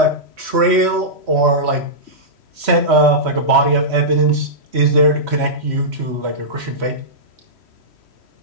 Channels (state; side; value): late; left; 3.1 ms